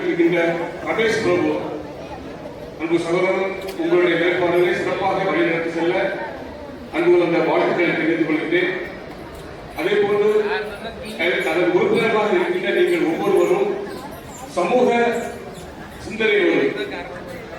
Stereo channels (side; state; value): both; identical; correlation 1.00